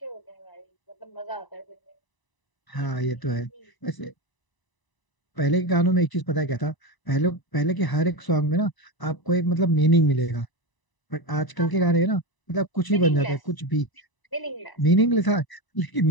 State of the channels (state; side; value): late; right; 1.0 ms